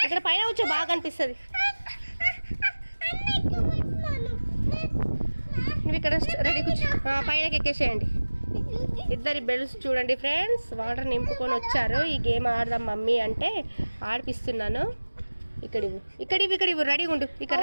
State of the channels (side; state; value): both; inverted; correlation -1.00